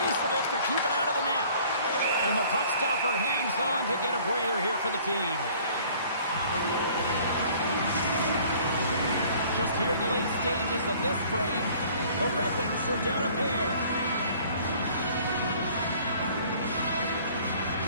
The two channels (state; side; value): inverted; both; correlation -0.53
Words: of it to keep it out of the net. And the puck stopper hangs on to get a breather here for the team. Just here in the late stages of this frame, the Red Wings are down a pair.